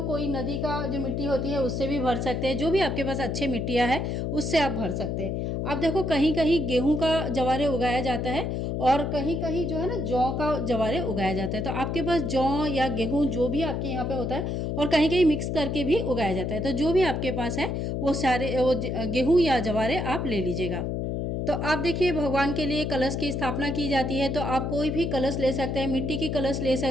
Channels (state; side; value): noise; left; hum, 1 dB below the sound